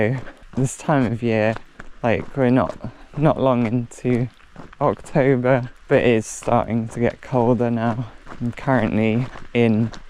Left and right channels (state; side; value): identical; both; correlation 1.00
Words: this time of year, like we're not long into October, but it is starting to get colder now. I'm currently in